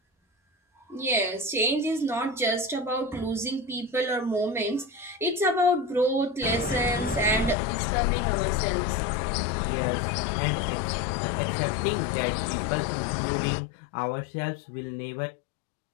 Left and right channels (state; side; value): drops out; right; at 7.6 s